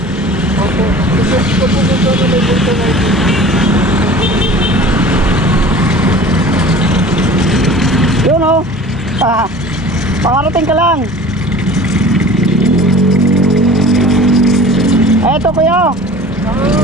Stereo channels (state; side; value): normal; both; correlation 0.42